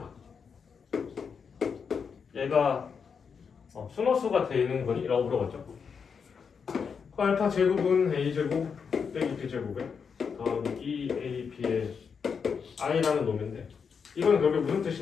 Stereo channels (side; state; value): right; quieter; 6.2 dB